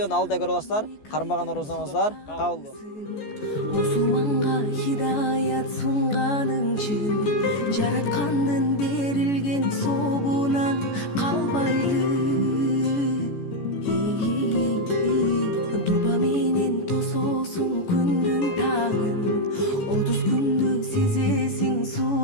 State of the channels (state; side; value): late; right; 14 ms